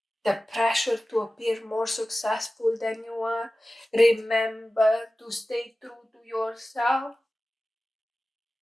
the pressure to appear more successful than you are. Remember to stay true to yourself.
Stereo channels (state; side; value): normal; both; correlation 0.96